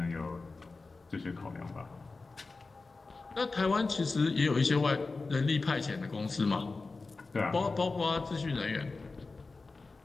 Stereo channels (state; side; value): quieter; right; 3.8 dB